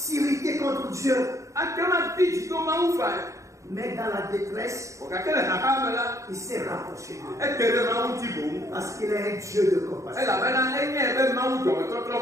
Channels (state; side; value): late; left; 0.15 ms